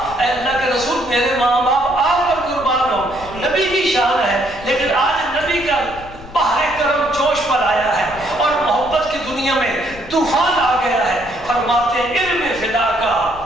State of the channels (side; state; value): left; noise; rumble, 16 dB below the sound